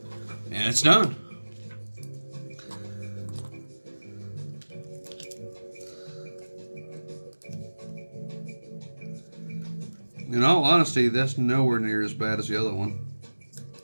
And it's done. In all honesty, that's nowhere near as bad as the other one.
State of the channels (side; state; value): both; inverted; correlation -1.00